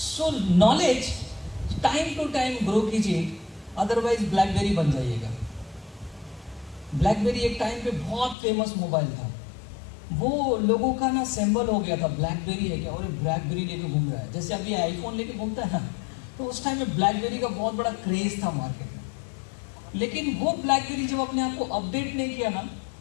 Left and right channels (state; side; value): drops out; right; at 8.3 s